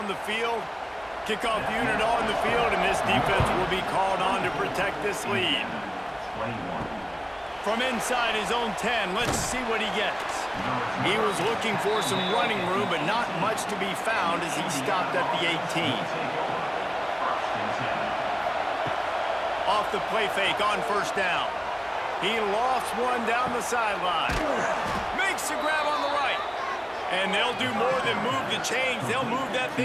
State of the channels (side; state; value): both; identical; correlation 1.00